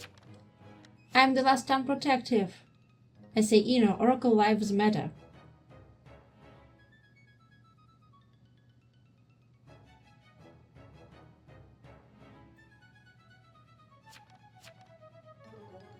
I'm the last time protective. I say, Oracle lives matter.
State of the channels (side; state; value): both; identical; correlation 1.00